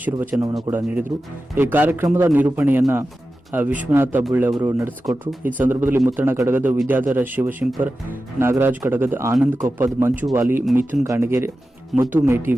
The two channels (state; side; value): normal; both; correlation 0.93